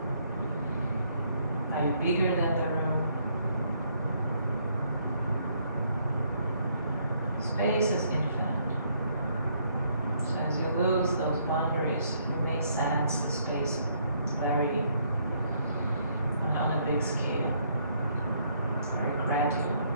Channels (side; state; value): both; inverted; correlation -0.69